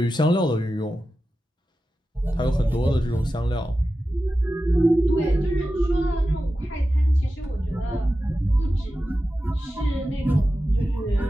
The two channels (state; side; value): normal; both; correlation 0.93